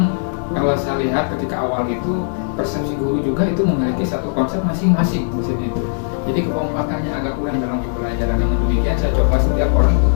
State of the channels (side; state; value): right; silent; digital silence